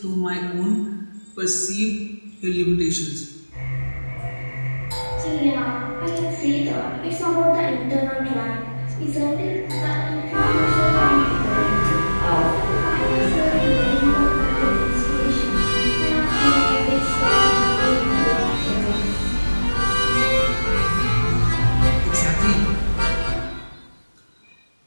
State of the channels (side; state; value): both; inverted; correlation -1.00